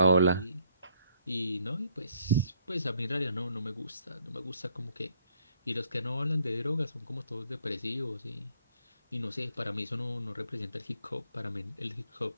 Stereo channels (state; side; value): inverted; both; correlation -0.67